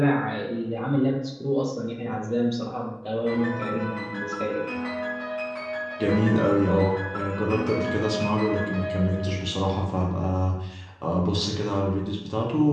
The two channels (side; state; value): both; identical; correlation 1.00